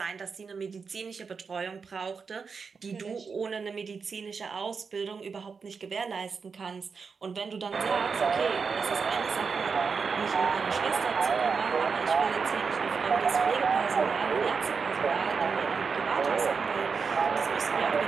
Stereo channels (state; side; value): quieter; left; 5.4 dB